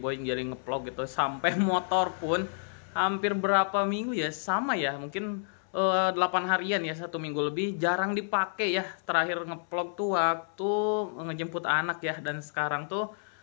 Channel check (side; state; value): right; silent; 58 dB below the other